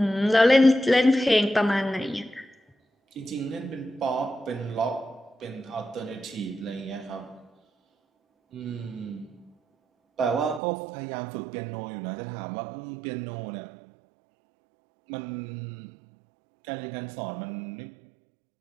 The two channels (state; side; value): drops out; left; at 10.6 s